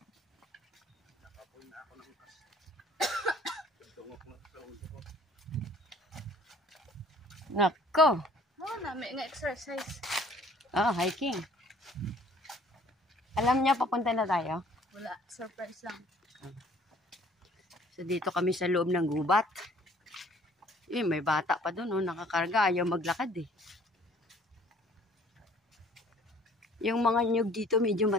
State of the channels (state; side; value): normal; both; correlation 0.56